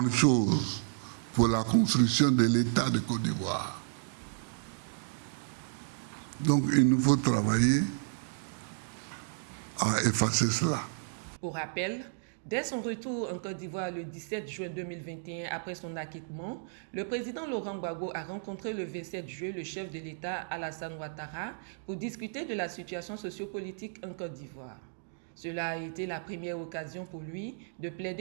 chose pour la construction de l'État de Côte d'Ivoire. Donc il nous faut travailler à effacer cela. Pour rappel, dès son retour en Côte d'Ivoire le 17 juin 2021, après son acquittement, le président Laurent Gbagbo a rencontré le 27 juillet le chef de l'État Alassane Ouattara pour discuter de la situation sociopolitique en Côte d'Ivoire. Cela a été la première occasion pour lui de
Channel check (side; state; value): left; silent; digital silence